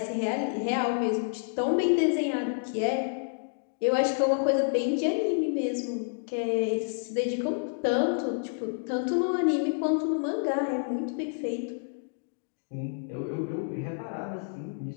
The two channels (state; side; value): silent; right; digital silence